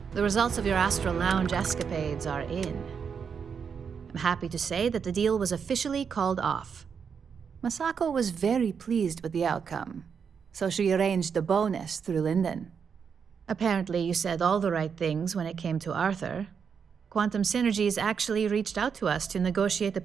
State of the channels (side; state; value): left; quieter; 6.6 dB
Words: the results of your Astral Lounge escapades are in. I'm happy to say that the deal was officially called off. Masako was very pleased with the outcome, so she arranged a bonus through Linden. Apparently, you said all the right things when it came to Arthur. Quantum Synergies actually reached out to us to negotiate the